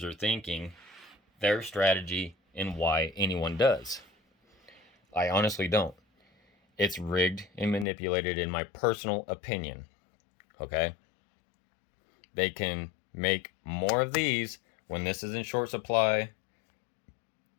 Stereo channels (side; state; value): right; drops out; at 7.9 s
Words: are thinking, their strategy, and why anyone does. I honestly don't. It's rigged and manipulated in my personal opinion. Okay? They can make more of these when this is in short supply